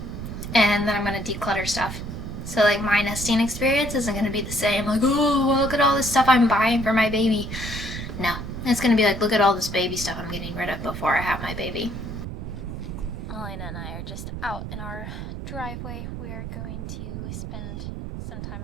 and then I'm gonna declutter stuff. So like my nesting experience isn't gonna be the same, like, oh, look at all this stuff I'm buying for my baby. No, it's gonna be like, look at all this baby stuff I'm getting rid of before I have my baby. Melina and I are just out in our driveway. We are going to spend some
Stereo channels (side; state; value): right; noise; rumble, 7 dB below the sound